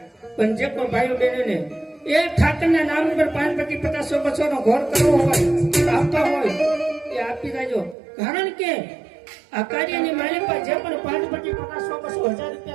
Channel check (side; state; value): left; drops out; at 8.0 s